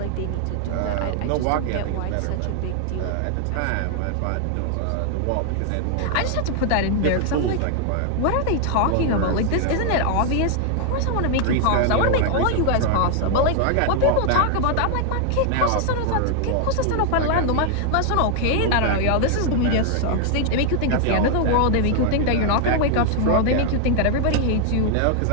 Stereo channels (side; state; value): both; different; correlation 0.00